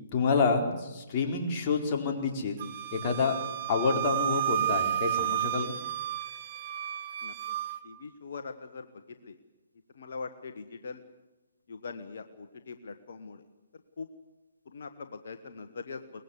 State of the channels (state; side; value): inverted; both; correlation -0.53